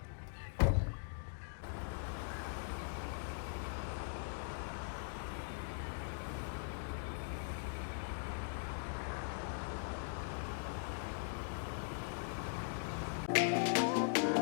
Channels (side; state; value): right; silent; digital silence